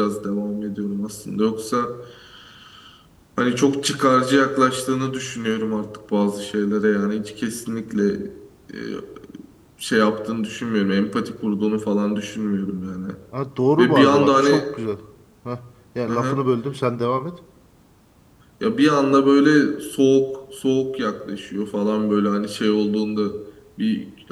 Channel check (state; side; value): identical; both; correlation 1.00